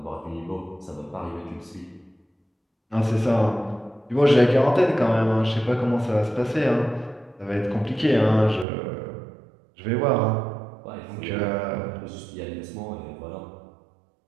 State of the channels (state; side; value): drops out; left; at 8.7 s